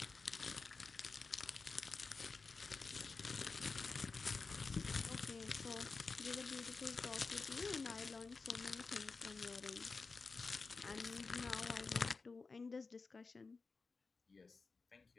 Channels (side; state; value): right; quieter; 4.3 dB